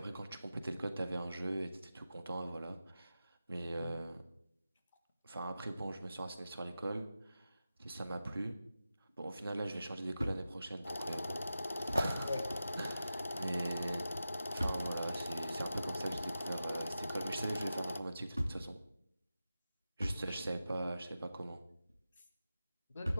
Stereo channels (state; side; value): inverted; both; correlation -0.93